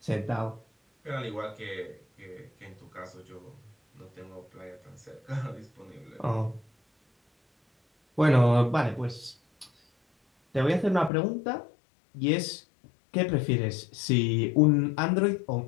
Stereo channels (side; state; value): right; drops out; at 11.1 s